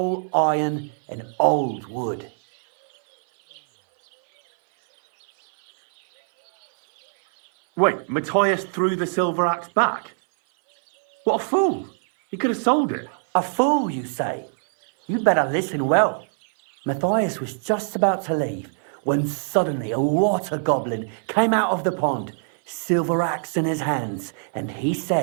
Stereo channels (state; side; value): silent; left; 59 dB below the other